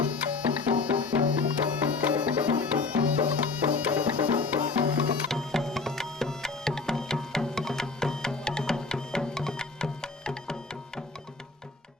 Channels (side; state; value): right; quieter; 4.1 dB